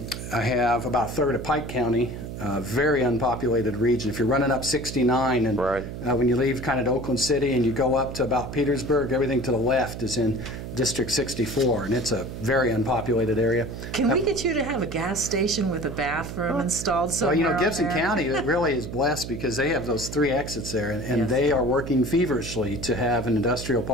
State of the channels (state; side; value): noise; right; hum, 8 dB below the sound